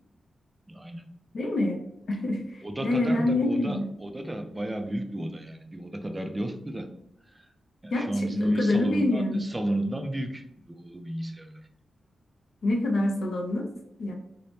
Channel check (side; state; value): both; normal; correlation 0.89